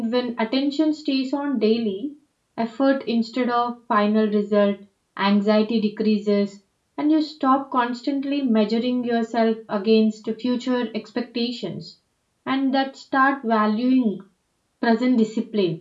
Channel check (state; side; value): identical; both; correlation 1.00